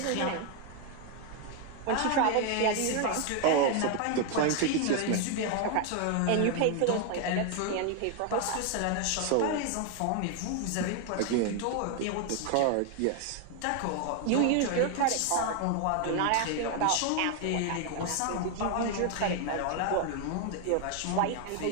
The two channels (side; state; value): both; different; correlation 0.01